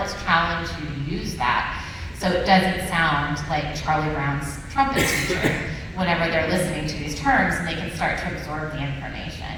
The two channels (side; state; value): both; identical; correlation 1.00